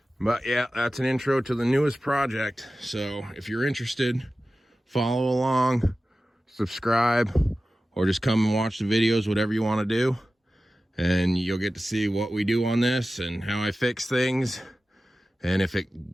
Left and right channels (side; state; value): both; normal; correlation 0.95